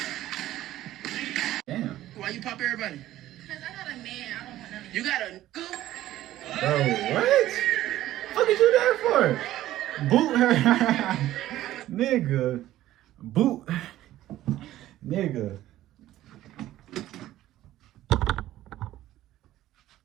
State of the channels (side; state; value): left; quieter; 14.2 dB